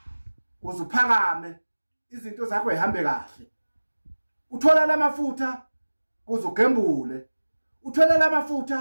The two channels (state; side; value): inverted; both; correlation -1.00